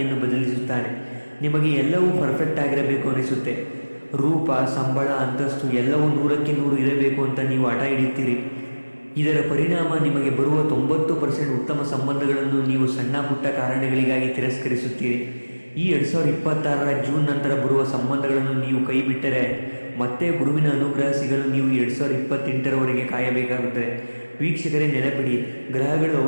ಬದಲಿಸುತ್ತಾನೆ. ನಿಮಗೆ ಎಲ್ಲವೂ ಪರ್ಫೆಕ್ಟ್ ಆಗಿರಬೇಕು ಅನಿಸುತ್ತೆ. ರೂಪ, ಸಂಬಳ, ಅಂತಸ್ತು ಎಲ್ಲವೂ 100ಕ್ಕೆ 100 ಇರಬೇಕು ಅಂತ ನೀವು ಹಠ ಹಿಡಿಯುತ್ತೀರಿ. ಇದರ ಪರಿಣಾಮ ನಿಮಗೆ ಬರುವ 90% ಉತ್ತಮ ಸಂಬಂಧಗಳನ್ನು ನೀವು ಸಣ್ಣ ಪುಟ್ಟ ಕಾರಣಗಳಿಗಾಗಿ ತಿರಸ್ಕರಿಸುತ್ತೀರಿ. ಈ 2026ರ ಜೂನ್ ನಂತರ ಬರುವ ಸಂಬಂಧಗಳನ್ನು ನೀವು ಕೈ ಬಿಟ್ಟರೆ ಮತ್ತೆ ಗುರುವಿನ ಅನುಗ್ರಹ ಸಿಗಲು ನೀವು 2028ರವರೆಗೆ ಕಾಯಬೇಕಾಗುತ್ತದೆ. ವೀಕ್ಷಕರೇ, ನೆನಪಿಡಿ, ಗ್ರಹಗಳು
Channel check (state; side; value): inverted; both; correlation -1.00